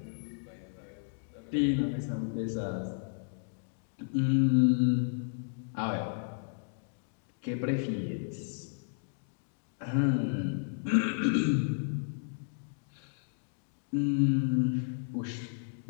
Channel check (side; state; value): right; silent; digital silence